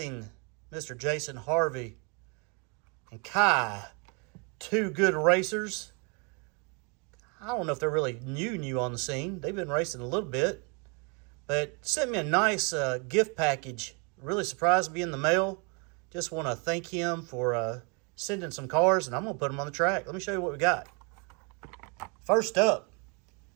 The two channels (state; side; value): quieter; left; 33.9 dB